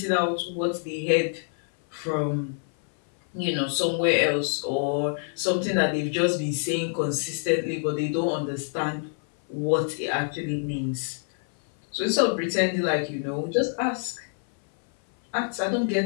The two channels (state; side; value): silent; right; 59 dB below the other